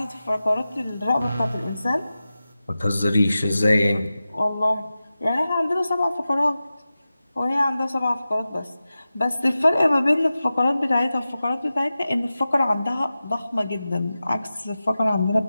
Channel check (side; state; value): both; inverted; correlation -0.94